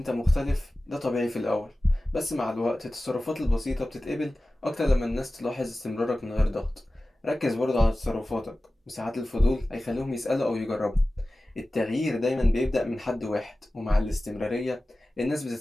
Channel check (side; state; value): both; normal; correlation 0.96